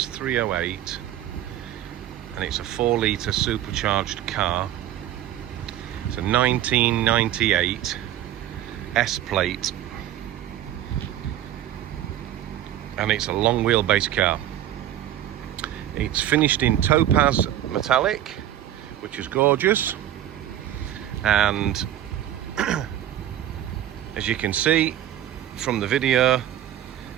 and it's a 4-litre supercharged car. It's a 1998 S-plate, and it's a long wheelbase car. It's finished in topaz metallic, which is gorgeous, and as you can see from the video,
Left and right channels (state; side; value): quieter; left; 11.9 dB